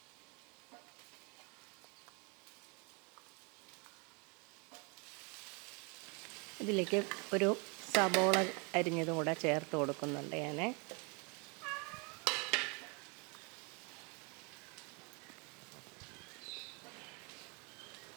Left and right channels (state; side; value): quieter; left; 32.1 dB